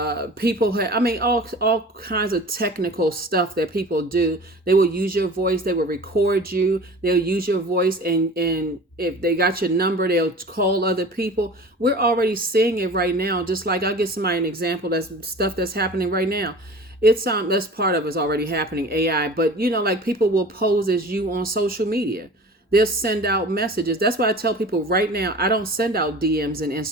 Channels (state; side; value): normal; both; correlation 0.40